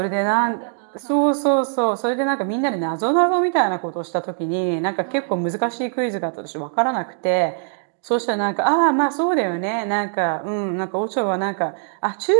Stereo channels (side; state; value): left; silent; digital silence